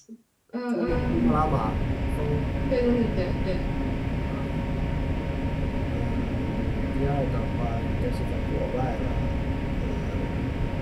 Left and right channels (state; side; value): identical; both; correlation 1.00